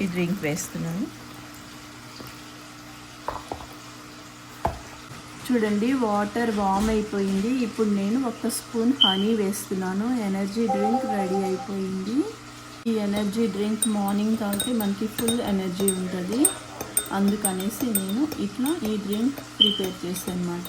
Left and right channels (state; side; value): identical; both; correlation 1.00